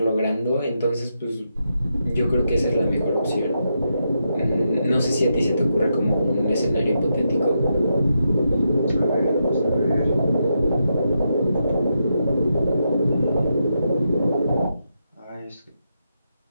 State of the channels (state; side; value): inverted; both; correlation -0.84